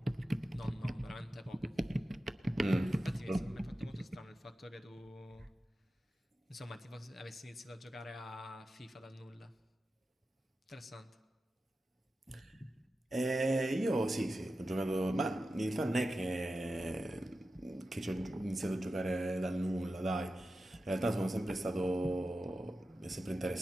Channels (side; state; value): both; normal; correlation 0.92